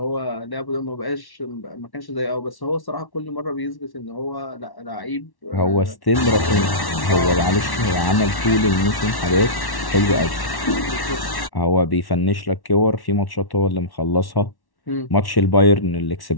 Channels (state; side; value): late; right; 1.1 ms